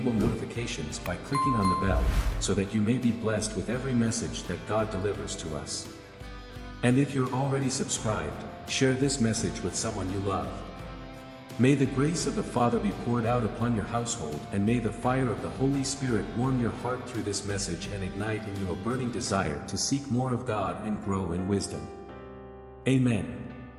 notifications by clicking on the bell, so that you may be blessed with every message that God delivers to us. And if you're already subscribed, share this message with someone you love. May the grace of the Father be poured out upon your household, and may the fire of the Holy Spirit warm your heart through this message and ignite in you a burning desire to seek more of God and grow in wisdom. Amen.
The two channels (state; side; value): identical; both; correlation 1.00